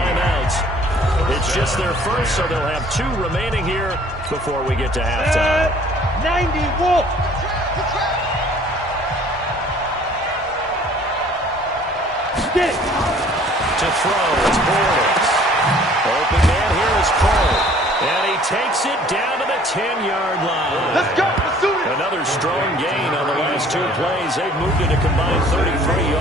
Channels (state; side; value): normal; both; correlation 0.54